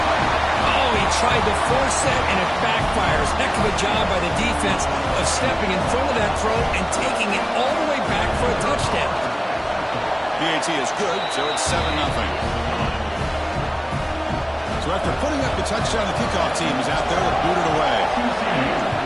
Oh, he tried to force that, and it backfires. Heck of a job by the defense of stepping in front of that throw and taking it all the way back for a touchdown. PAT is good, so it's 7-0. So after putting up the touchdown, the kickoff team is out there to boot it away.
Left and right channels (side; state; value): both; identical; correlation 1.00